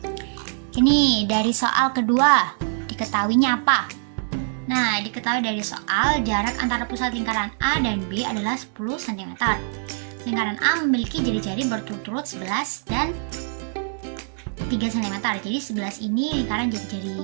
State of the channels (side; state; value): left; silent; digital silence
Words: Ini dari soal kedua, diketahuinya apa? Nah, diketahui dari soal jarak antara pusat lingkaran A dan B adalah 10 cm. Lingkaran A memiliki jari-jari berturut-turut 11 dan 3 cm. Jadi 11 ini lingkaran